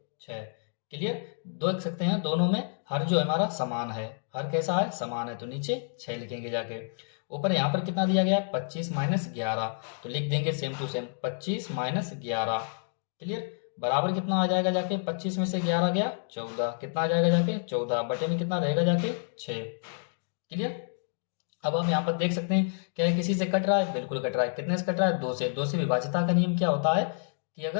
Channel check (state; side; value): silent; right; digital silence